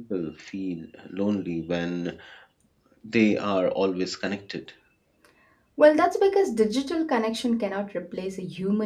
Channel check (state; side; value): identical; both; correlation 1.00